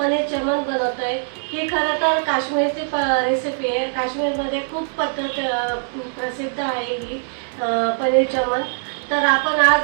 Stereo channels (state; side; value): silent; left; 65 dB below the other